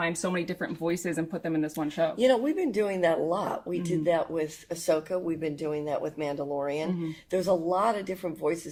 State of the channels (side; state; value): both; identical; correlation 1.00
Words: so many different voices and put them in this one show? We've been doing that a lot. We did that with Ahsoka. We've been doing that with Mandalorian. There's a lot of different